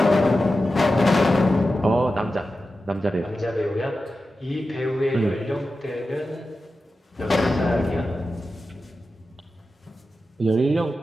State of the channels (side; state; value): both; normal; correlation 0.92